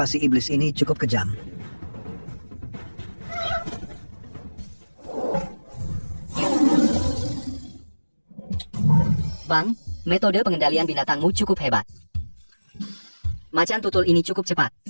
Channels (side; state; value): both; inverted; correlation -1.00